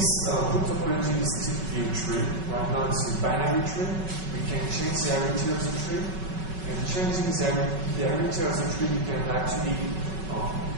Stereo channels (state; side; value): late; left; 5.3 ms